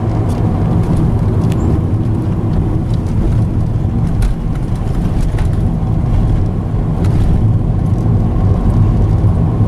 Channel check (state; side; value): identical; both; correlation 1.00